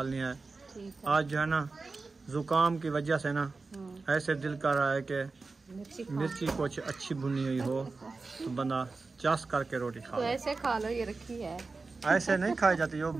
है। आज जो है ना जुकाम की वजह से ना ऐसे दिल कर रहा है कि मिर्ची कुछ अच्छी भुनी हुई हो तो बंदा चास करके रोटी खा। तो ऐसे खा लो, ये रखी है। ऐसे नहीं खाई जाती, जो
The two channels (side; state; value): left; quieter; 3.9 dB